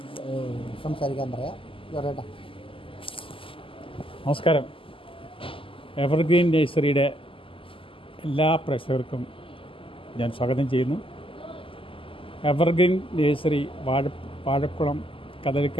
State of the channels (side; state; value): right; late; 0.25 ms